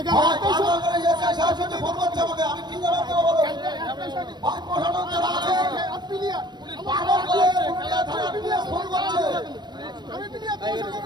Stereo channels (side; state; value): left; late; 0.21 ms